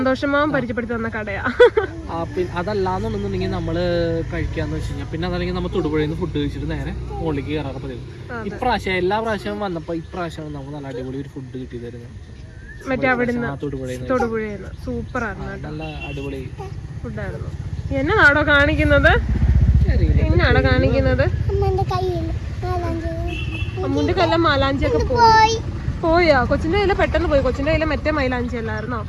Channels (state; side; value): identical; both; correlation 1.00